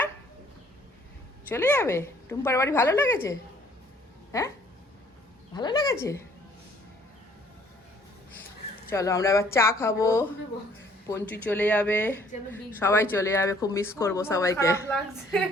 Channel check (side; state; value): both; normal; correlation 0.60